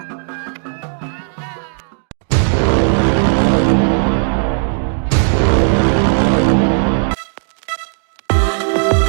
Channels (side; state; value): left; silent; 61 dB below the other